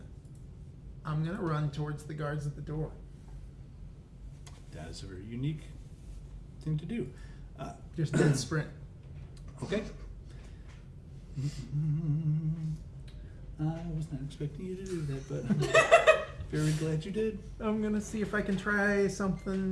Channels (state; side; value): identical; both; correlation 1.00